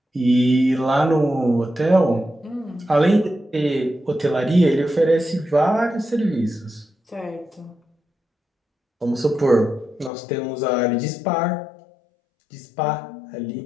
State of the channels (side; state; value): right; drops out; at 10.1 s